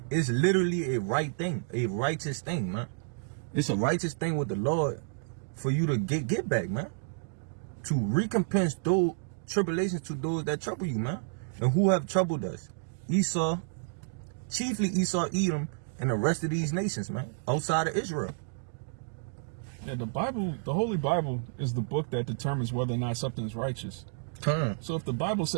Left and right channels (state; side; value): silent; left; digital silence